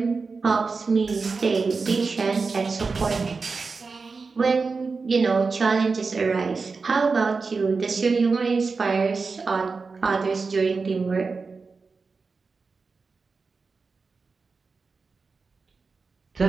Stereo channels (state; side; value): quieter; left; 4.5 dB